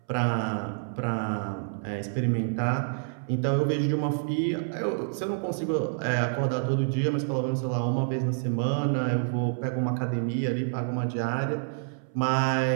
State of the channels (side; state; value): left; silent; 59 dB below the other